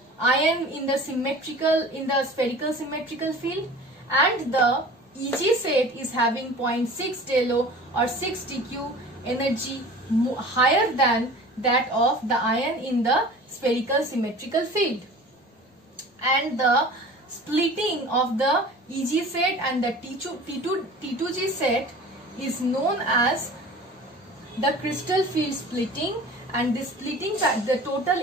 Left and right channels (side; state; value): both; normal; correlation 0.41